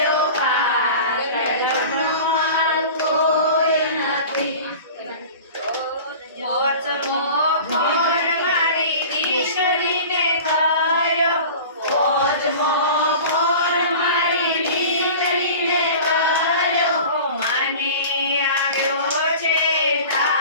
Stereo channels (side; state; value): both; inverted; correlation -0.38